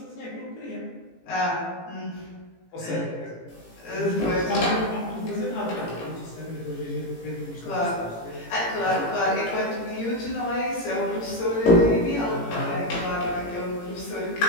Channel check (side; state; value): right; late; 18 ms